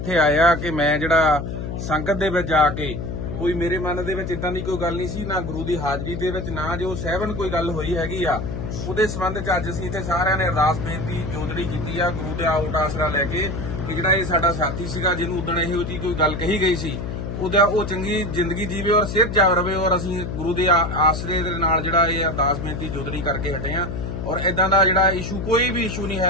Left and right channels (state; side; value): noise; left; hum, 5 dB below the sound